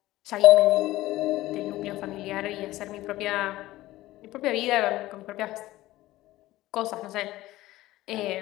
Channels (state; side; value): quieter; right; 16.7 dB